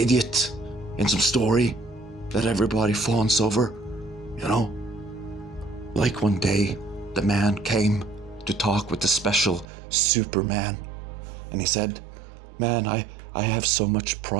in some story that everybody fawns over, Like one day, the man came to talk with the special Superman, and he said, "Man, I have so much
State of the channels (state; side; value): drops out; left; at 9.7 s